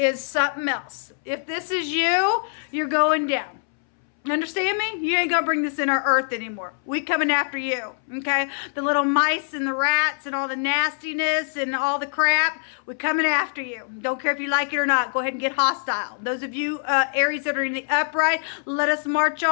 something else. If this is you, you're going down. Understand me? You ain't gonna bring this in our earth anymore. We coming after you, okay? The little mice and the rats and all the nastiness and all the crap, we coming after you. Don't care if you like it or not. Go ahead and get hostile. Those of you Aries that are in the upright, let us march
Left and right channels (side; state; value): right; silent; 63 dB below the other